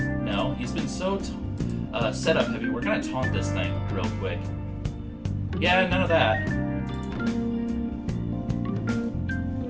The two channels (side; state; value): both; identical; correlation 1.00